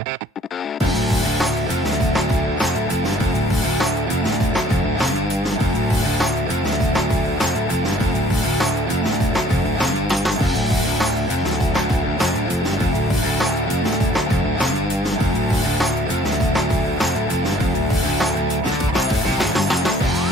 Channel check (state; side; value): normal; both; correlation 0.57